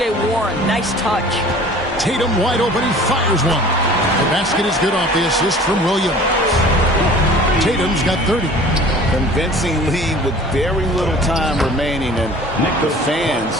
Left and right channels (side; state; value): both; normal; correlation 0.46